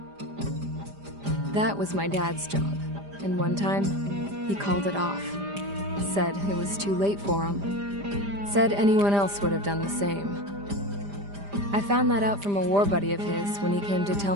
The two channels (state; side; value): late; left; 5.0 ms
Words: That was my dad's job, and one time, he called it off. Said it was too late for him. Said anyone else would have done the same. I found that out from a war buddy of his when he came to tell